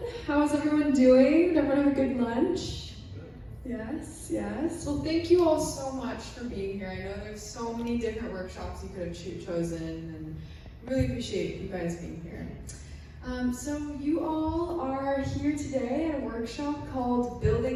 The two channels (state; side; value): identical; both; correlation 1.00